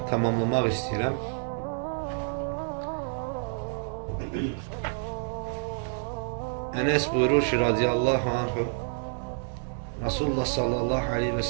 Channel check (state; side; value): silent; left; digital silence